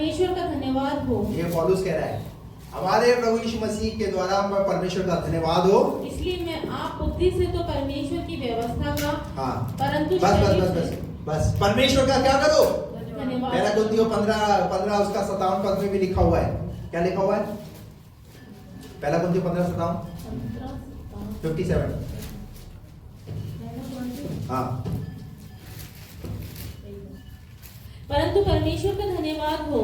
का धन्यवाद हो। ये पौलुस कह रहा है, हमारे प्रभु यीशु मसीह के द्वारा परमेश्वर का धन्यवाद हो। इसलिए मैं आप बुद्धि से तो परमेश्वर की व्यवस्था का, हाँ, परंतु बस परमेश्वर का क्या करो? धन्यवाद। पहला कुरिन्थियों 15 उसका 57 पद में भी लिखा हुआ है। क्या लिखा हुआ है? पहला कुरिन्थियों 15:57 57। हाँ, परंतु परमेश्वर का धन्यवाद हो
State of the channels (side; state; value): both; identical; correlation 1.00